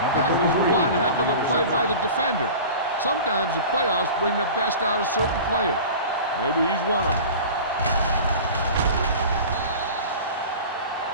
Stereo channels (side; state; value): both; inverted; correlation -0.37